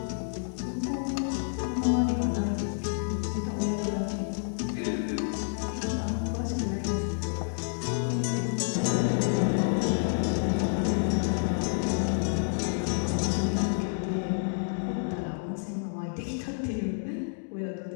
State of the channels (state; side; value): silent; right; digital silence